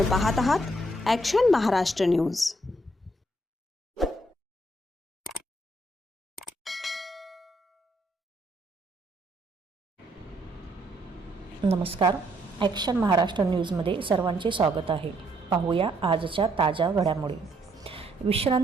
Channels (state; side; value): normal; both; correlation 0.71